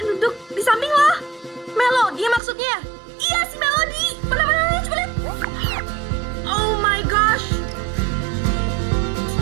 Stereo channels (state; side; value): drops out; left; at 2.4 s